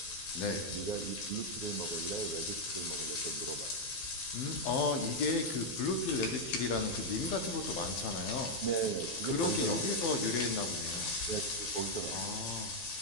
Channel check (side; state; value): right; late; 12 ms